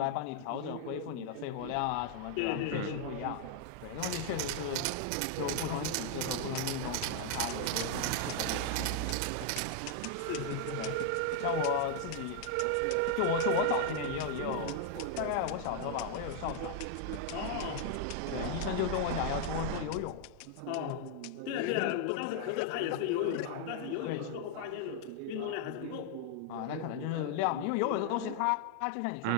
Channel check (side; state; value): both; different; correlation 0.00